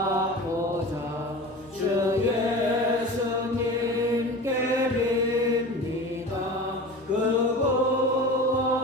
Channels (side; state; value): both; normal; correlation 0.34